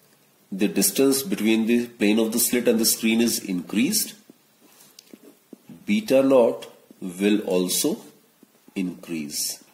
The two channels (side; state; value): both; identical; correlation 1.00